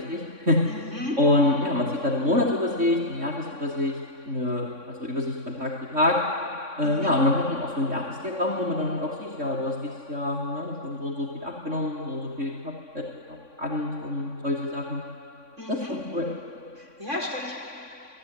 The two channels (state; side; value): late; left; 3.6 ms